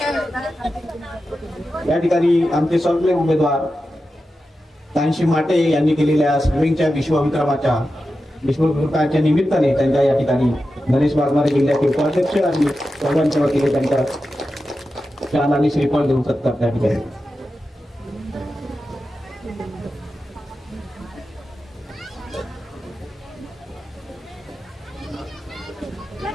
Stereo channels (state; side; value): normal; both; correlation 0.91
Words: या ठिकाणी आमचे सर्व उमेदवार कांशी माटे यांनी केलेल्या स्विमिंगच्या विश्वविक्रमाच्या निमित्ताने त्यांच्या या ठिकाणी गणेश वाघमारे जिल्ह्याचे उपाध्यक्ष आणि सर्वांच्या वतीने त्यांच्या शाल आणि श्रीफळ देऊन सत्कार त्या ठिकाणी.